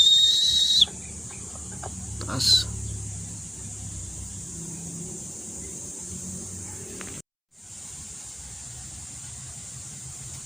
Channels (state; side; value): identical; both; correlation 1.00